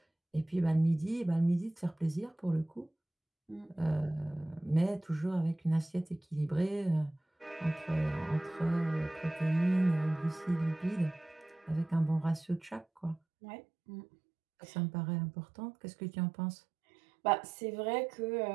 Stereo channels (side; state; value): left; drops out; at 13.2 s